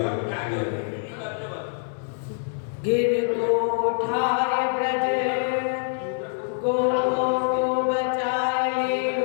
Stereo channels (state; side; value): silent; right; 62 dB below the other